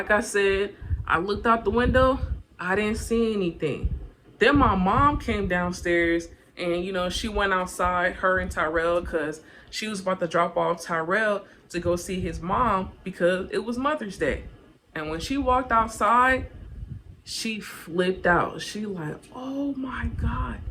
I said, I looked out the window, I didn't see anything. Then my mom came downstairs and, she went outside, her and Tyrell, because she was about to drop off Tyrell to go see his mom because it was Mother's Day. And when she walked outside, she flipped out. She like, oh my God.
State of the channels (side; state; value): both; identical; correlation 1.00